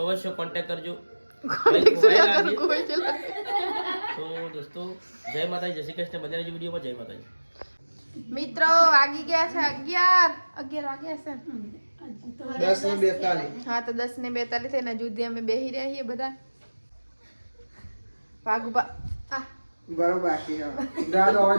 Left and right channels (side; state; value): both; inverted; correlation -1.00